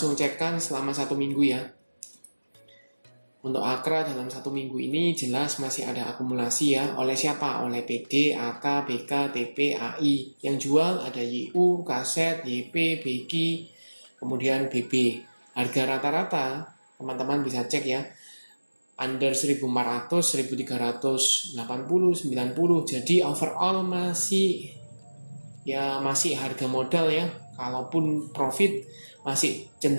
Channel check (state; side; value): inverted; both; correlation -1.00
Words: cekkan selama satu minggu ya. Untuk Akra dalam satu minggu ini jelas masih ada akumulasi ya. Oleh siapa? Oleh PD, AK, BK, TP, AI. Yang jual ada YU, KZ, YP, BG, kemudian BB. Harga rata-rata teman-teman bisa cek ya, under 1400, 1380, 90. Jadi overall masih harga modal ya. Kalaupun profit masih